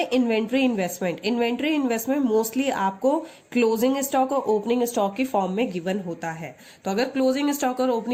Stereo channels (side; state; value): both; identical; correlation 1.00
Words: inventory investment. Inventory investment mostly आपको क्लोजिंग स्टॉक और ओपनिंग स्टॉक की फॉर्म में गिवन होता है। तो अगर क्लोजिंग स्टॉक और